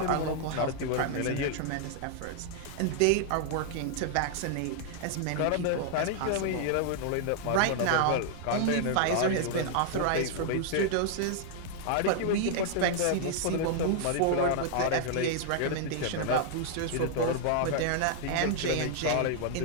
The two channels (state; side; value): different; both; correlation 0.00